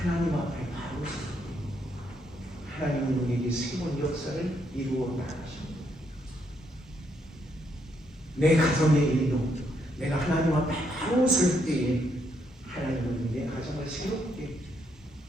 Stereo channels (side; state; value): both; normal; correlation 0.75